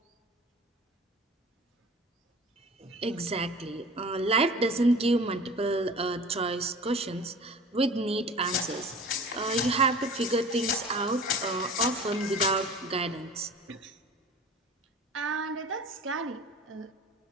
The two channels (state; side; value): normal; both; correlation 0.41